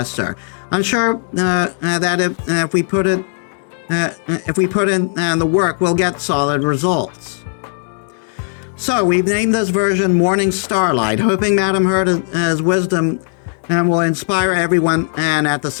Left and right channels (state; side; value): silent; right; 63 dB below the other